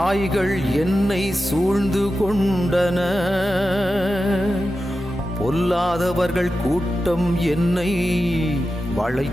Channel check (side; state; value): both; normal; correlation 0.92